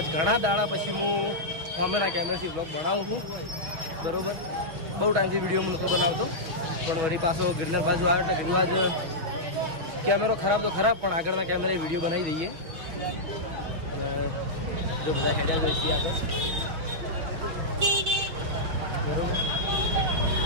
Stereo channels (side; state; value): left; late; 6.1 ms